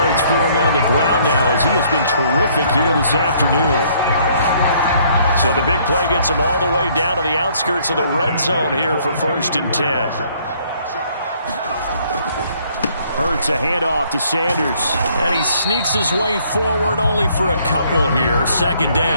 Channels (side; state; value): both; inverted; correlation -0.63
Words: for him on the ground now as he has been terrific here this afternoon. So the big play gets him all the way down to the outskirts of the red zone here for 1st and 10. Hurts a handoff to Sanders. And he sneaks his way forward only for a couple here. 2nd